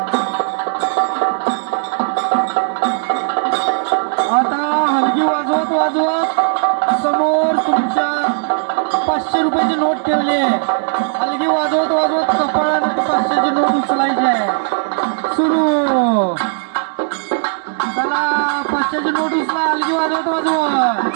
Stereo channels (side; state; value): left; silent; digital silence